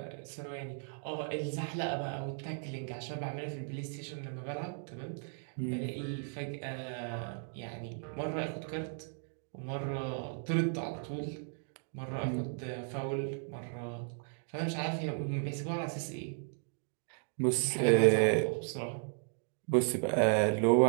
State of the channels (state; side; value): silent; left; 54 dB below the other